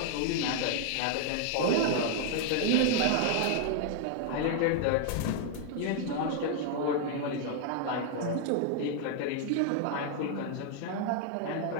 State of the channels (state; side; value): different; both; correlation 0.00